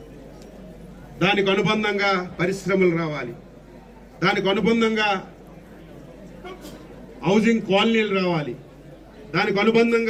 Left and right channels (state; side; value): identical; both; correlation 1.00